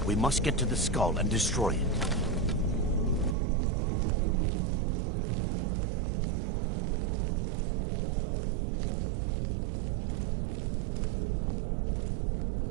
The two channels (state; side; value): drops out; left; at 3.4 s